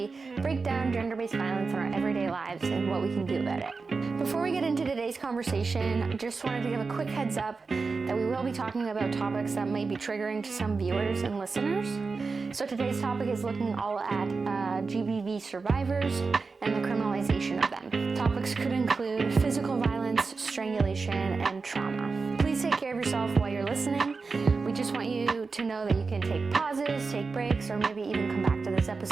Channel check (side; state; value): left; quieter; 4.4 dB